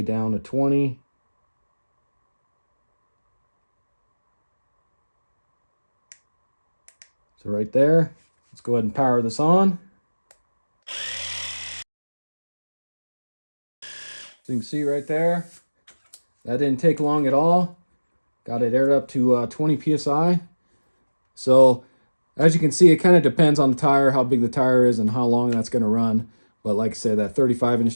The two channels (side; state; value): both; inverted; correlation -1.00